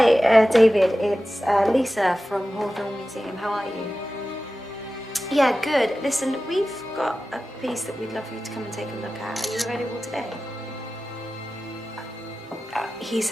David. It's Lisa from Hawthorne Museum. How are you? Yeah, good. Listen, we've got a piece that we'd love for you to come and take a look at. Are you available today? He's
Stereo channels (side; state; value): both; normal; correlation 0.94